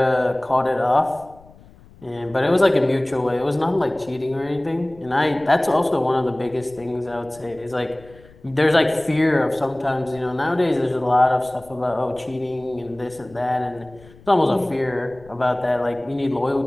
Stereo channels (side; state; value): left; noise; rumble, 24 dB below the sound